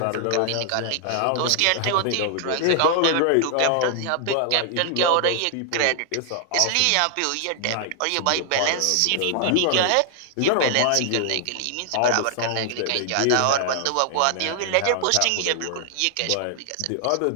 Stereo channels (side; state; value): both; different; correlation 0.00